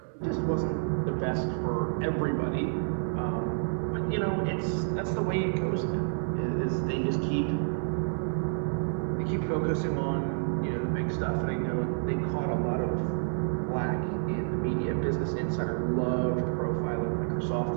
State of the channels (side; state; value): left; silent; digital silence